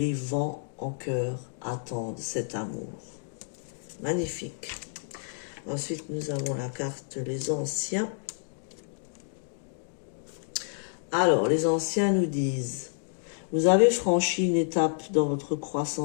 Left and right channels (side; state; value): right; silent; digital silence